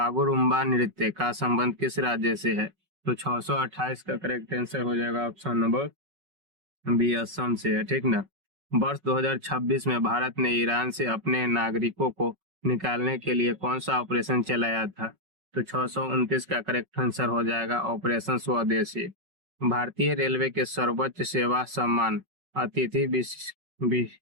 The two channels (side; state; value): left; late; 5.4 ms